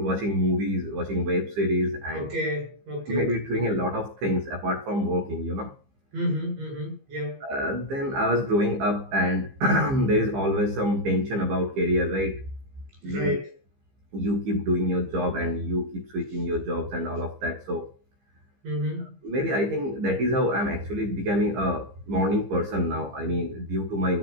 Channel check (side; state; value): left; late; 15 ms